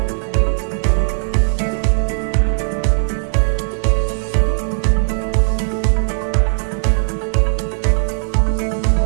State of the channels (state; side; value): silent; left; 64 dB below the other